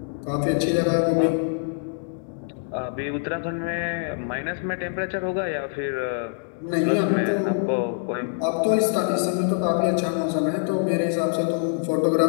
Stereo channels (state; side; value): silent; right; digital silence